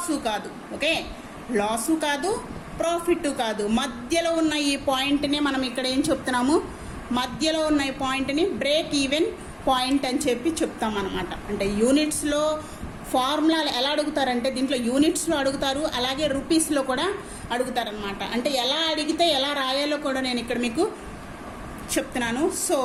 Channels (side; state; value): both; identical; correlation 1.00